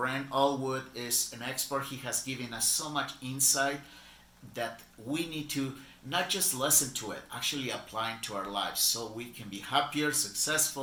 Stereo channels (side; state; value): both; identical; correlation 1.00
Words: Allgood is an expert. He has given us so much insight that we need to not just listen to it, actually apply it to our lives so we can be happier,